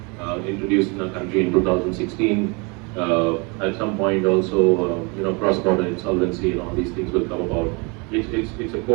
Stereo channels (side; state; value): left; quieter; 29.7 dB